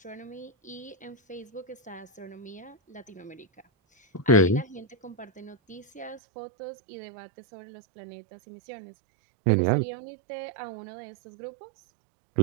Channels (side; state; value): left; drops out; at 6.2 s